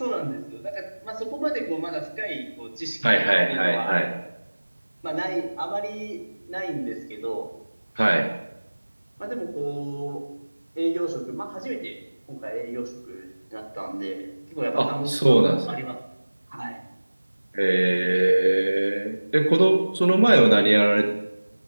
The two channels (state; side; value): inverted; both; correlation -1.00